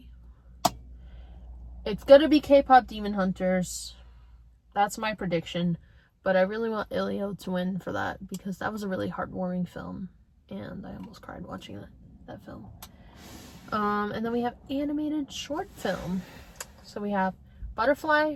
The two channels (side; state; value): both; identical; correlation 1.00